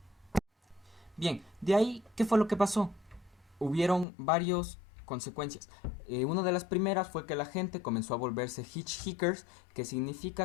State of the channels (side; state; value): right; drops out; at 4.0 s